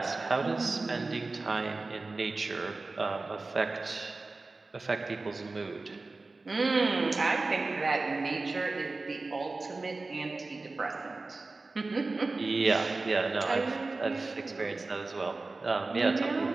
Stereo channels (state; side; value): quieter; left; 3.5 dB